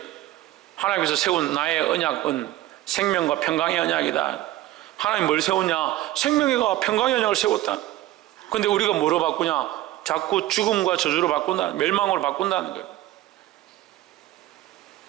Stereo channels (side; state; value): left; quieter; 15.4 dB